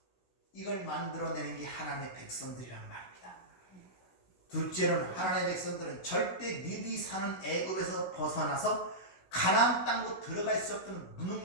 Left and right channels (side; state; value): right; late; 16 ms